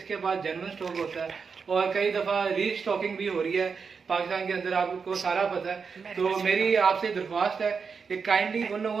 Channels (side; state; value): left; quieter; 5.6 dB